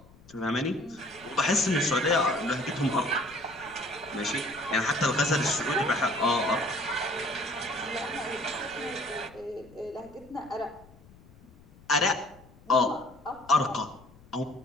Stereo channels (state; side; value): noise; left; rumble, 24 dB below the sound